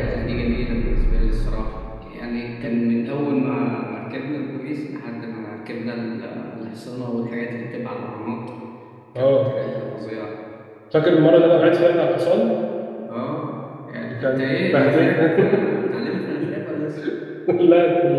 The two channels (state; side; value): identical; both; correlation 1.00